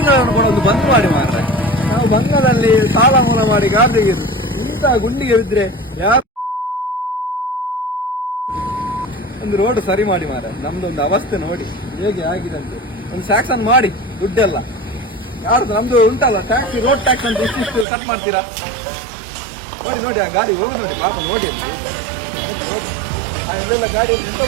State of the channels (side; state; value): left; drops out; at 17.9 s